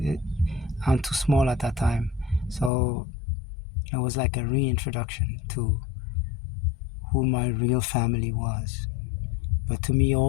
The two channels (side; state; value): right; drops out; at 2.7 s